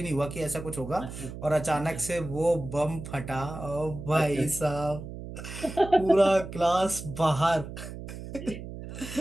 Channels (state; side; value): noise; right; hum, 10 dB below the sound